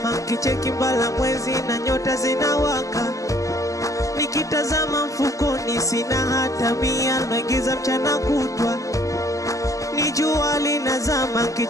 kicheki mbala mwezi na nyota zinawaka. Nikitazama mfukoni sina hata mia, naingiza mchana kutwa. Ni jua linazama,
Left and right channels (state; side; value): late; right; 0.16 ms